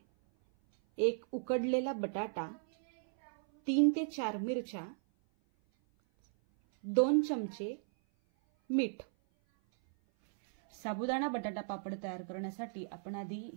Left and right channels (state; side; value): silent; left; 54 dB below the other